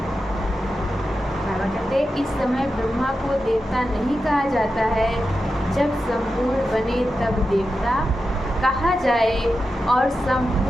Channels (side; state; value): both; normal; correlation 0.90